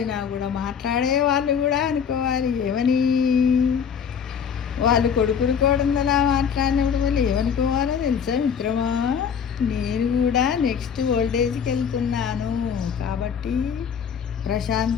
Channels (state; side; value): quieter; right; 7.3 dB